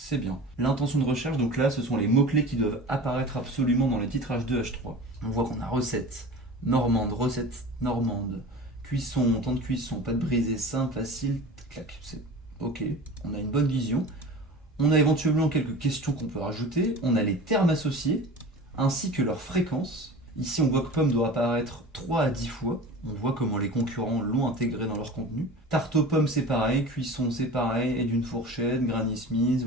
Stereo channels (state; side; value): normal; both; correlation 0.36